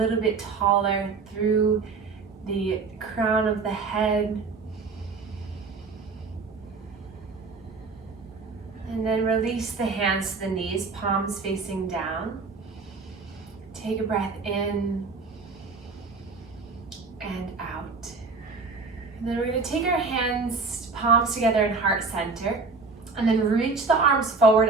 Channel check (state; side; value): quieter; left; 4.3 dB